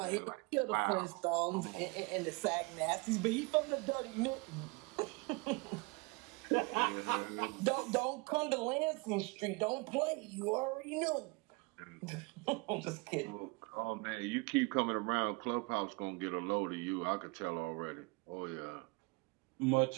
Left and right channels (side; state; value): left; quieter; 27.1 dB